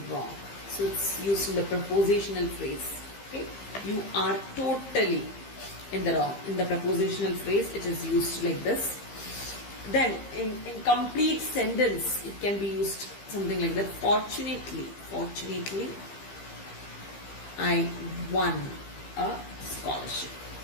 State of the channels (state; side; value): late; right; 15 ms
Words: wrong. So it's used in the prepositional phrase. Okay, you are totally in the wrong. In the prepositional phrase, it is used like this. Then in complete sentence, it can be used something like that. Fortunately, I won a scholarship.